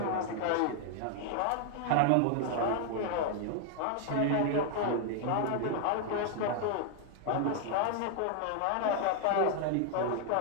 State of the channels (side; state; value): both; different; correlation 0.00